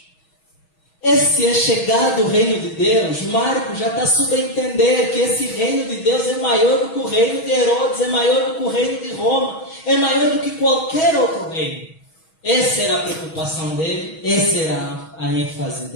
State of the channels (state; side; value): late; right; 6.3 ms